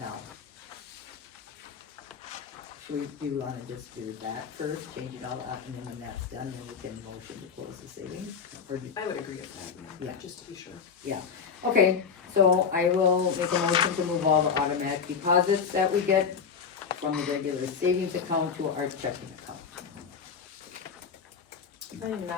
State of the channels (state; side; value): quieter; right; 6.2 dB